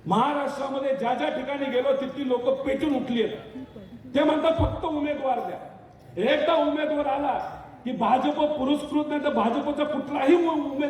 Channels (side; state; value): both; identical; correlation 1.00